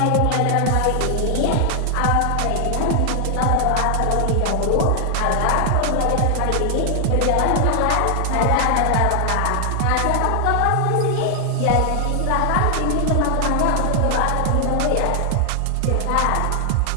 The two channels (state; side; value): different; both; correlation 0.00